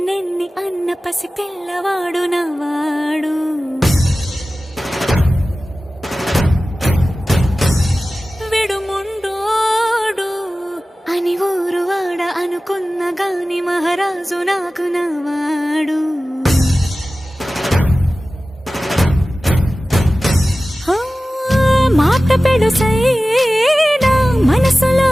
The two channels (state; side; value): normal; both; correlation 0.96